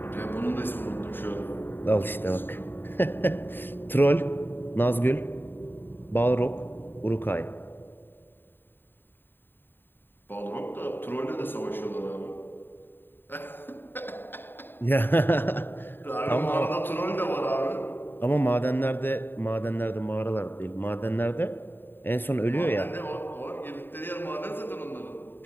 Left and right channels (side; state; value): right; late; 0.096 ms